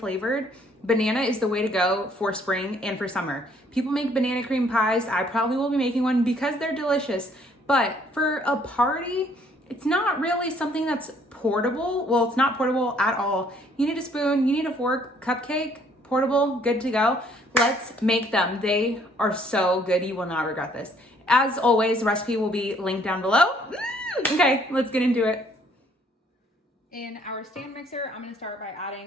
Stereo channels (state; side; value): normal; both; correlation 0.63